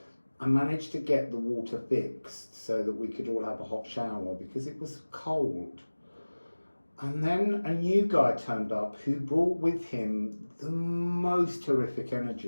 I managed to get the water fixed so that we could all have a hot shower because it was cold. And then a new guy turned up who brought with him the most horrific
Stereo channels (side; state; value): both; inverted; correlation -1.00